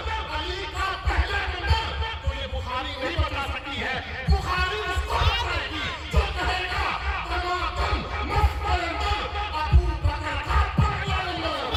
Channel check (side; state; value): both; identical; correlation 1.00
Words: अली का पहला नंबर, तो ये बुखारी नहीं बता सकती है। बुखारी उसको बताएगी जो कहेगा टमाटर मस्त कलंदर अबू बकर का पहला नंबर।